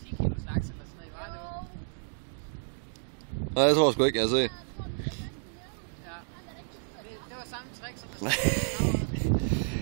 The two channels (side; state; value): left; silent; digital silence